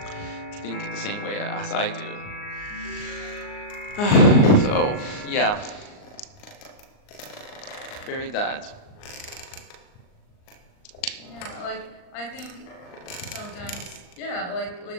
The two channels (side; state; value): right; late; 39 ms